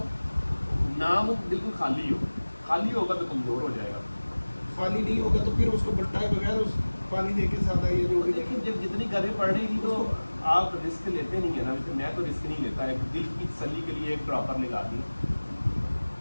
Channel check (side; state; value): both; inverted; correlation -1.00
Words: ना, वो बिल्कुल खाली होगा तो कमजोर हो जाएगा। खाली नहीं होगा तो फिर उसको बट्टाए बगैर उस पानी देके सादा ये जो भी लेकिन जब जितनी गर्मी पड़ रही थी तो आप रिस्क लेते नहीं है ना, मैं तो रिस्क नहीं लेता, एक दिल की तसल्ली के लिए एक ड्रॉपर लगा दी,